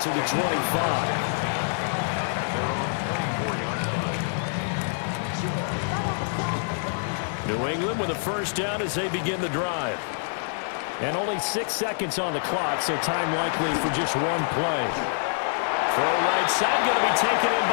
the 25. At their own 24-yard line. New England with a first down as they begin the drive. And only 6 seconds on the clock, so time likely for just one play. Throw right side, going to be taken in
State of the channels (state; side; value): silent; right; digital silence